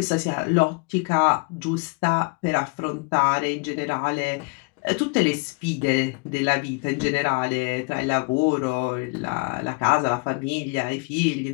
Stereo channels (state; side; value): quieter; right; 30.7 dB